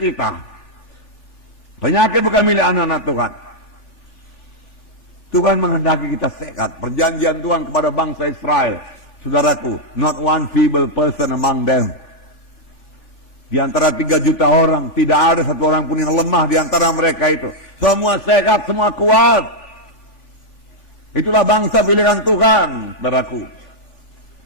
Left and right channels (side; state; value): right; late; 3.5 ms